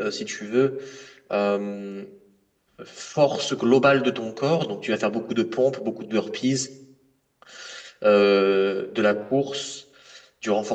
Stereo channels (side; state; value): both; identical; correlation 1.00